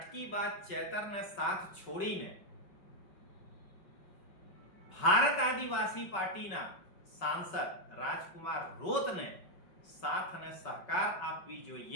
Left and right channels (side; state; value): right; late; 5.3 ms